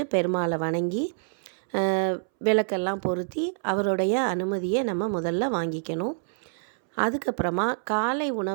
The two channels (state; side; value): silent; left; 60 dB below the other